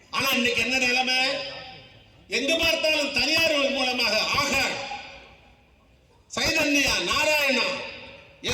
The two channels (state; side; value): identical; both; correlation 1.00